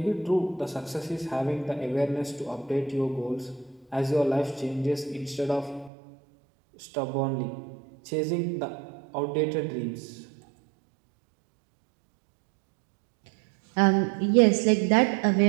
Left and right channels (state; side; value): drops out; left; at 5.9 s